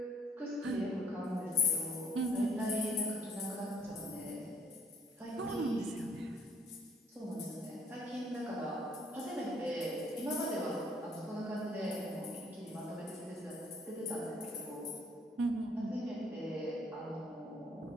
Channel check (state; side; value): normal; both; correlation 0.61